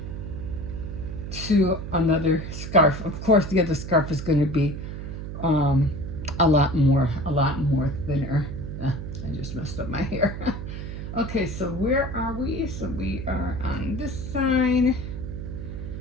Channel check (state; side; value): noise; right; hum, 7 dB below the sound